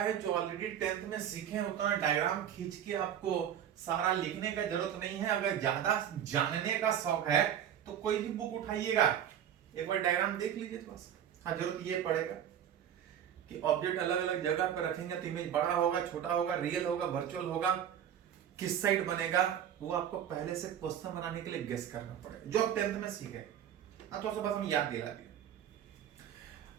जो ऑलरेडी 10th में सीखे हैं, उतना डायग्राम खींच के आपको सारा लिखने का जरूरत नहीं है। अगर ज्यादा जानने का शौक है तो कोई भी बुक उठाइएगा, एक बार डायग्राम देख लीजिए थोड़ा सा। हाँ, जरूरत ये पड़ेगा कि ऑब्जेक्ट अलग अलग जगह पर रखेंगे तो इमेज बड़ा होगा, छोटा होगा, रियल होगा, वर्चुअल होगा, किस साइड बनेगा, वो आपको पहले से क्वेश्चन बनाने के लिए गेस करना पड़ेगा, जो आप 10th में सीखे। थोड़ा सा बस हम याद दिला दिए।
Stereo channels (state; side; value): quieter; left; 9.7 dB